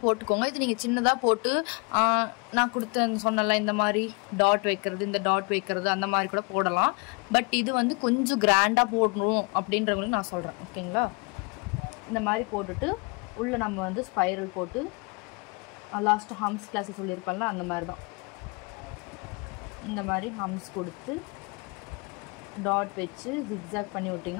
போட்டுக்கோங்க. இது நீங்கள் சின்னதாக போட்டு நான் சொன்னல இந்த மாதிரி டாட் வைக்கிறது, இந்த டாட் வைக்கிறது அந்த மாதிரி கூட போடலாம். பட் இது வந்து கொஞ்சம் கிராண்டாக போடணும் அப்படின்றவங்களுக்கு நான் சொல்கிறேன். ஓகேங்களா? இந்த மாதிரி போட்டுட்டு உள்ளே நம்ம வந்து ஸ்பைரல் போட்டு லாஸ்ட்டு ஹம்ஸ் கிளாஸ் சொல்லியிருப்பேன்ல அந்த மாதிரி தான் இந்த மாதிரி ஹம்ஸ் கொடுத்து டாட் வச்சு ஜிக்ஸாக் பண்ணி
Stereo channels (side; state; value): right; quieter; 31.9 dB